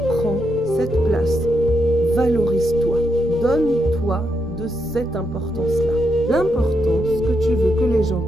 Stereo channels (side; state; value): both; normal; correlation 0.81